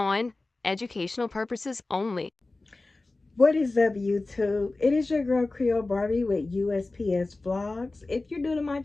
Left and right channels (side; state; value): right; quieter; 3.2 dB